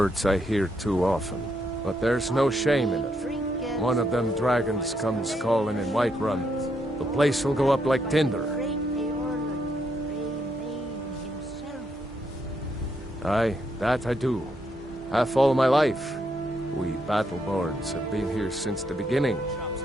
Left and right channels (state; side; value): normal; both; correlation 0.77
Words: I hear too often. But there's no shame in it. One of them dragons comes calling in Whiterun. The place will go up like tinder. Aye, that I do. Half all my life. We Battleborns have been here since the beginning,